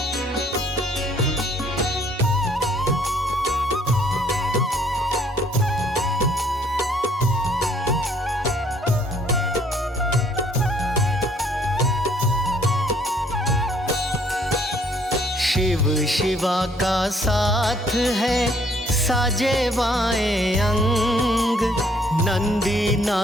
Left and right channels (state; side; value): normal; both; correlation 0.63